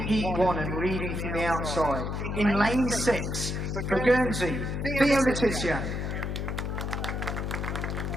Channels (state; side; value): noise; left; hum, 2 dB below the sound